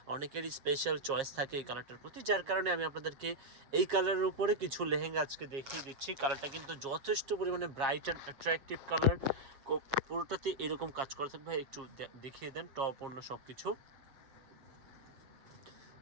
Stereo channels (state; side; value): late; left; 7.4 ms